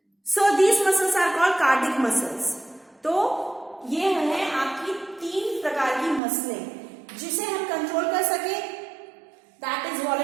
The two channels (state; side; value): drops out; left; at 6.2 s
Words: So these muscles are called cardiac muscles. तो ये है आपकी तीन प्रकार की मसलें, जिसे हम कंट्रोल कर सके दैट इज